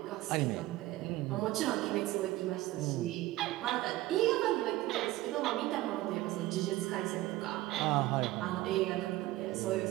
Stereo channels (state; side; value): quieter; left; 17.3 dB